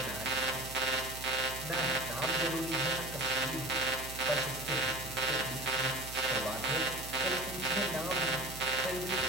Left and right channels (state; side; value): noise; right; hum, 12 dB below the sound